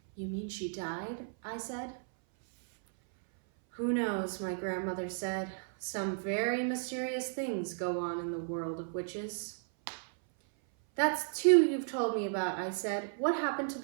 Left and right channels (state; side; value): silent; left; 55 dB below the other